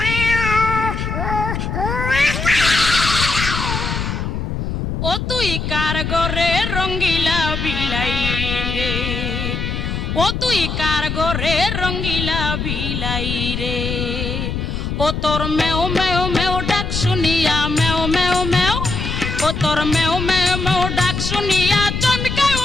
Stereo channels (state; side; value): noise; left; rumble, 3 dB below the sound